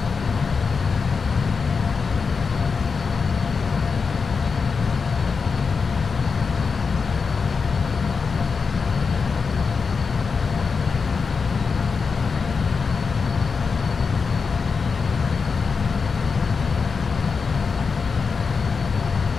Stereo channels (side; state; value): right; quieter; 5.1 dB